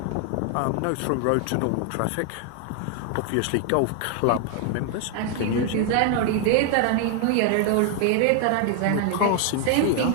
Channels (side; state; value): both; different; correlation 0.00